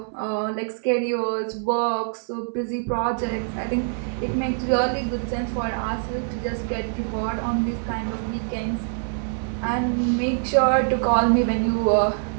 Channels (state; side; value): silent; left; 62 dB below the other